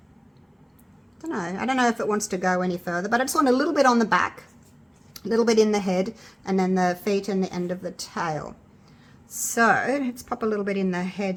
I don't know if it wants to go any further, but I just want a little bit on the back, a little bit in the head, and then the feet and the end of the tail. So let's pop a little bit in the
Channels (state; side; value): identical; both; correlation 1.00